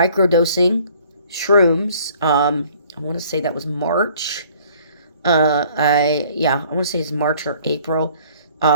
shrooms. I want to say that was March. I want to say it's March or April.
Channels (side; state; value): both; inverted; correlation -0.56